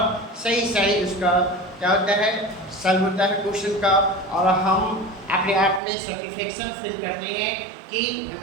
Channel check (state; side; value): drops out; left; at 5.8 s